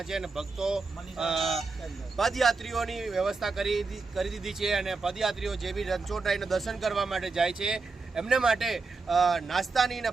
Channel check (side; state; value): left; quieter; 4.1 dB